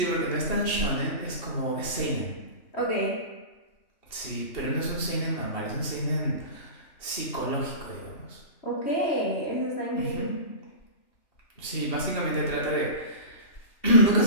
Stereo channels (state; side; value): late; right; 2.7 ms